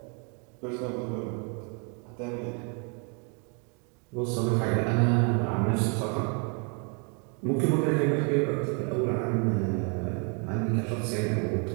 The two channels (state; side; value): quieter; left; 37.1 dB